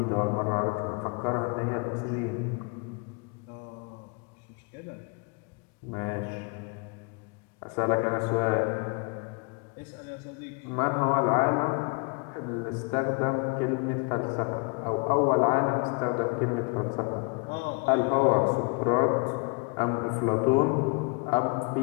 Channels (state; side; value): quieter; right; 31.8 dB